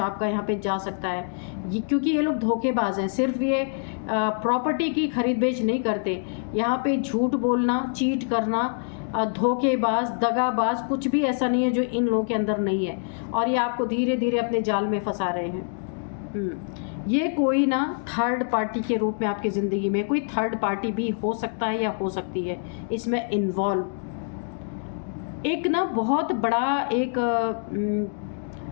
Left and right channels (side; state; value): right; silent; digital silence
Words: यहाँ पे जा सकता है। क्योंकि ये लोग धोखेबाज हैं। सिर्फ ये प्रॉपर्टी की खरीद बेच नहीं करते, यहाँ पे झूठ बोलना, चीट करना, धोखेबाज, दगाबाज, कुछ भी ऐसा नहीं है जो इन लोगों के अंदर नहीं है, और ये आपको धीरे धीरे अपने जाल में फंसा रहे हैं। ये कोई ना थर्ड पार्टी के रूप में आपकी ज़िंदगी में कोई थर्ड पार्टी भी हो सकता है या हो सकती है इसमें इन्वॉल्व। एक ना बहुत बड़ा एक